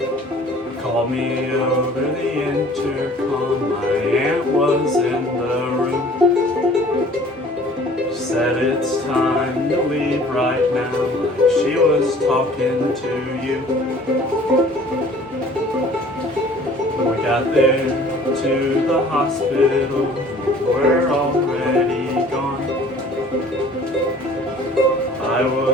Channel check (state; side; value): normal; both; correlation 0.50